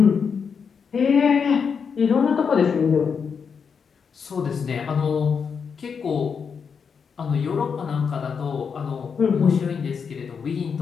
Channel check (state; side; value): quieter; right; 6.2 dB